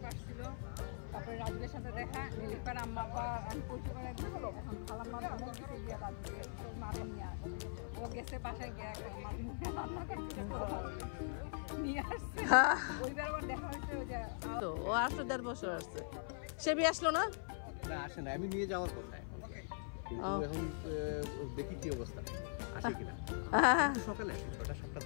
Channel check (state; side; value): silent; right; 50 dB below the other